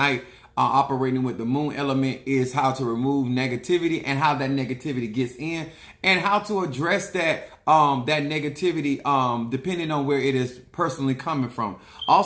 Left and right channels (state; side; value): identical; both; correlation 1.00